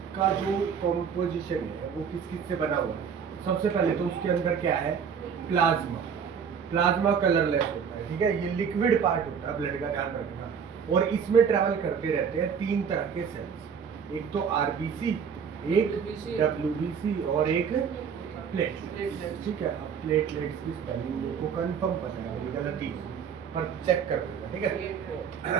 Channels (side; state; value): left; quieter; 7.0 dB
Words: का जो कंपोजिशन है वो किस किस से बना हुआ है? सबसे पहले तो उसके अंदर क्या है? प्लाज्मा। प्लाज्मा कलरलेस होता है, ठीक है। ये लिक्विड पार्ट होता है ब्लड का, ध्यान रखना। और इसमें ट्रैवल करते रहते हैं 3 तरह के सेल्स, एक तो आरबीसी, एक डब्ल्यूबीसी और एक प्लेटलेट्स, ठीक है। अब प्लेटलेट्स की स्पेलिंग मेरे को कंफर्म पता है, मेरी गलती पर चेक कर दूंगा, ठीक है।